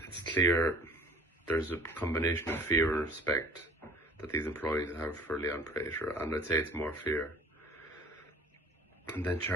it's clear there's a combination of fear and respect that these employees have for Leon Prater, and I'd say it's more fear. And then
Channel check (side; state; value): both; normal; correlation 0.49